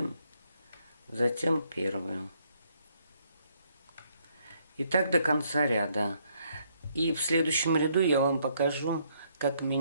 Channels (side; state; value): both; inverted; correlation -0.71